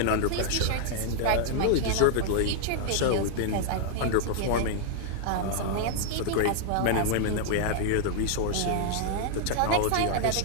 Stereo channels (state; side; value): different; both; correlation -0.01